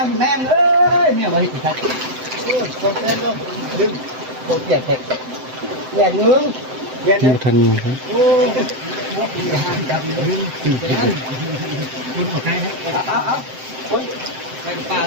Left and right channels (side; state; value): left; late; 7.8 ms